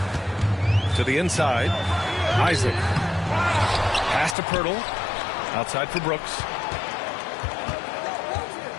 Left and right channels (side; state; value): right; drops out; at 4.4 s